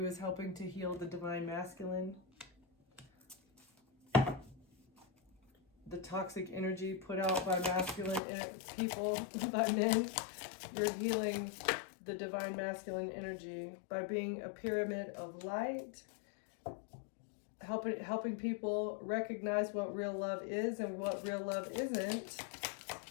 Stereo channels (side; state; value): right; drops out; at 8.2 s